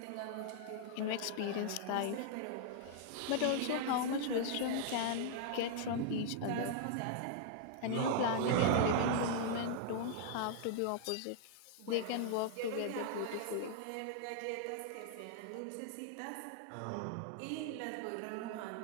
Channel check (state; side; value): different; both; correlation -0.01